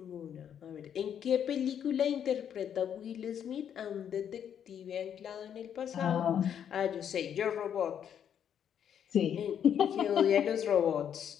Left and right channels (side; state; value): right; quieter; 8.9 dB